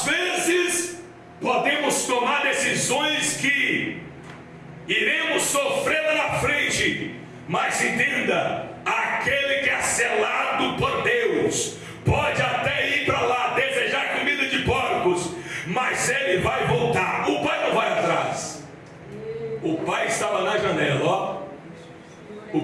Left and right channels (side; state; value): both; identical; correlation 1.00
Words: vezes podemos tomar decisões que iremos sofrer lá na frente, mas entenda, aquele que é selado por Deus pode até ir para lá desejar comida de porcos, mas ele vai voltar. O pai não vai atrás. O pai estava na janela, ó.